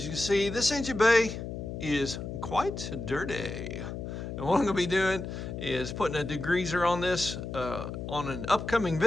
you can see, this engine bay is quite dirty. And what I'm gonna be doing is putting a degreaser on this on an upcoming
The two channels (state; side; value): noise; left; hum, 7 dB below the sound